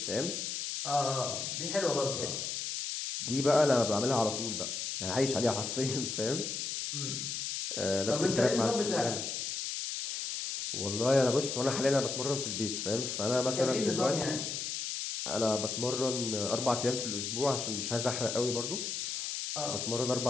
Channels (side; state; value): left; noise; hiss, 3 dB below the sound